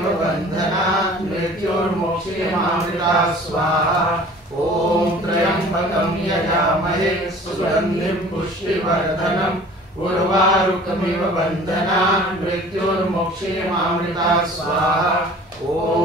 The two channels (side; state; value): both; normal; correlation 0.47